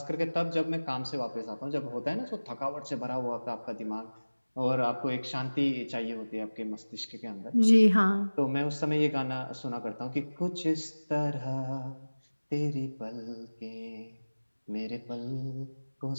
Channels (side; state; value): both; inverted; correlation -1.00